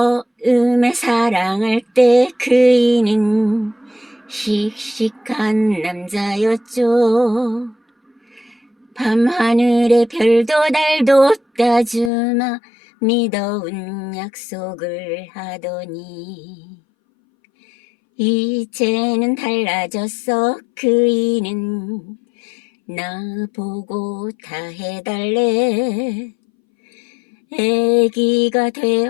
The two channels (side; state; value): right; drops out; at 12.1 s